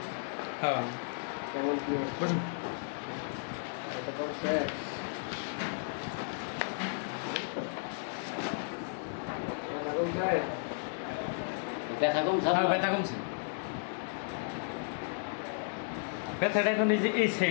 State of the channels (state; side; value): silent; right; digital silence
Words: হ্যাঁ বসুন। ব্যথা কমছে? হ্যাঁ ব্যথা কমছে। ব্যথাটা এখন এই যে এই